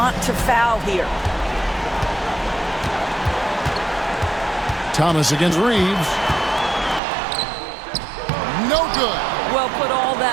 to foul here. Thomas against Reeves. No good. Well, put all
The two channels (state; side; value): drops out; left; at 7.0 s